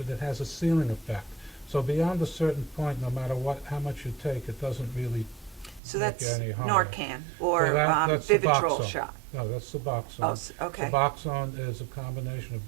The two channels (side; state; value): left; drops out; at 5.8 s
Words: has a ceiling effect. So beyond a certain point, no matter how much you take, it doesn't really So make that's any harm. Narcan or So that's Vivitrol Suboxone. shot. No, that's Suboxone. Oh, okay. Suboxone is a combination of